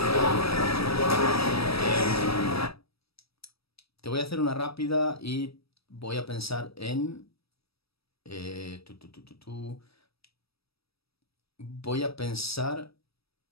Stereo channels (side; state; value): right; late; 0.77 ms